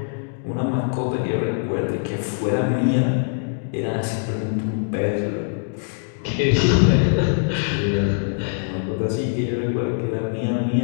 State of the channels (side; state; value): right; silent; digital silence